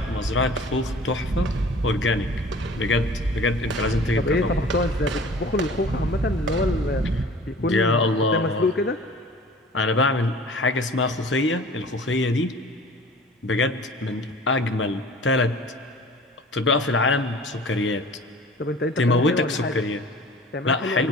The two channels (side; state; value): both; normal; correlation 0.44